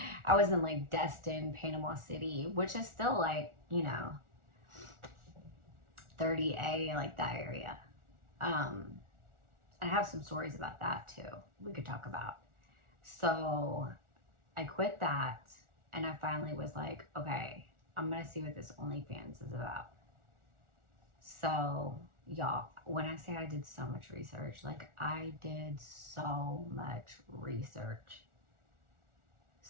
I was in like Destin, Panama City, which is still like, you know, 30A, like that area. I have some stories about that too, we could talk about. So I quit that, and I finally was like, okay, I'm gonna see what this Onlyfans is about. So y'all, when I say I did so much research, like I did so much research.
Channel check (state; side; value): late; left; 1.4 ms